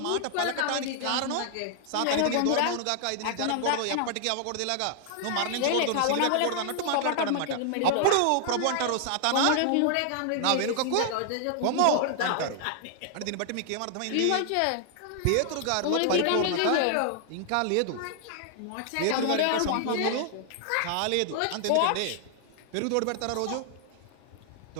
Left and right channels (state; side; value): different; both; correlation 0.00